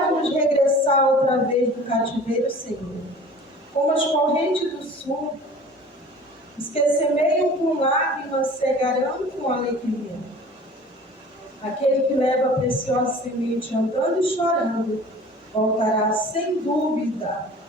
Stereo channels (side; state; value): both; normal; correlation 0.44